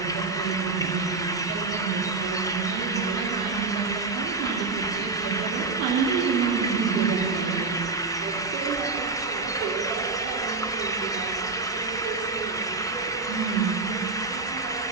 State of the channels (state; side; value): quieter; left; 3.9 dB